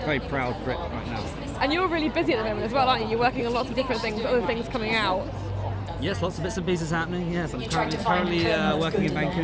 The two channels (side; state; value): both; identical; correlation 1.00